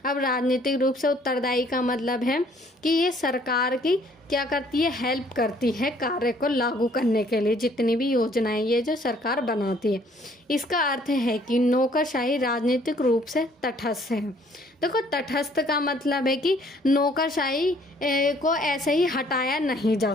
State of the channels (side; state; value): both; normal; correlation 0.61